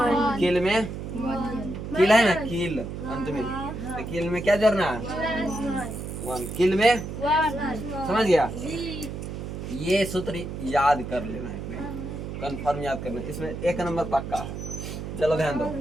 किल में किल है ना, किल अंत में, तो किल में क्या जोड़ना है? 1। किल में समझ गया? ये सूत्र याद कर लेना है, कंफर्म याद करना, इसमें 1 नंबर पक्का है। चलो ध्यान दो।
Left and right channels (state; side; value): noise; right; hum, 7 dB below the sound